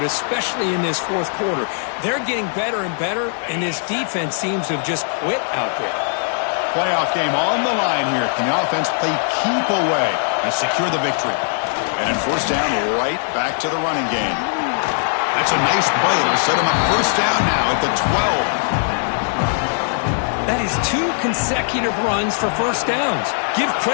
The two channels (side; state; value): right; silent; 66 dB below the other